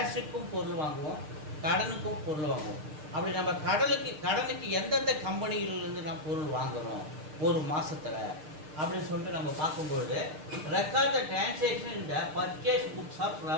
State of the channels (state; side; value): late; left; 6.6 ms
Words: பொருள் வாங்குவோம், கடனுக்கும் பொருள் வாங்குவோம். அப்படி நம்ம கடனுக்கு எந்தெந்த கம்பெனியில இருந்து நாம் பொருள் வாங்குறோம் ஒரு மாசத்துல அப்படின்னு சொல்லிட்டு நம்ம பார்க்கும்போது record the transaction in the purchase books of